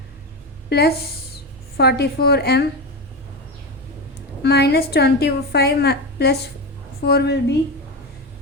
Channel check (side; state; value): both; normal; correlation 0.18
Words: Plus 44m minus 25 plus 4 will be